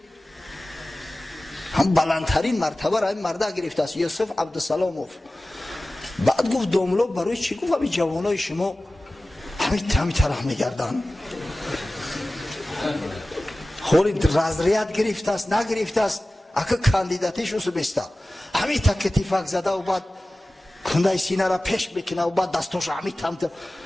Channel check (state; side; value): normal; both; correlation 0.97